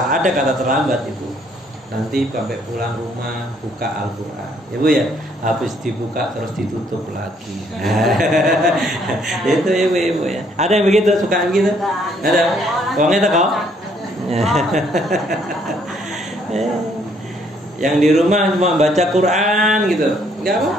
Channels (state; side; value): normal; both; correlation 0.66